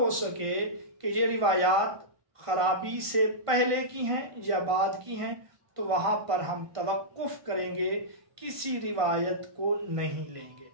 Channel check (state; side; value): late; left; 1.5 ms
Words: سکے کہ یہ روایات خرابی سے پہلے کی ہیں یا بعد کی ہیں، تو وہاں پر ہم توقف کریں گے، کسی روایت کو نہیں لیں گے۔